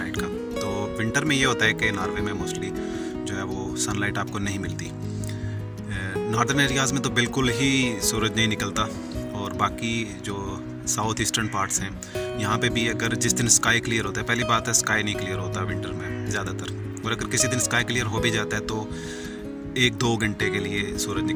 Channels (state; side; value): identical; both; correlation 1.00